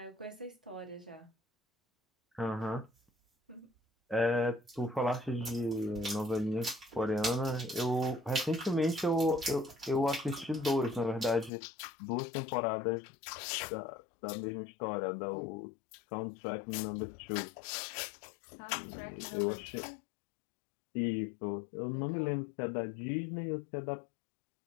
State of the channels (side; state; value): right; drops out; at 11.5 s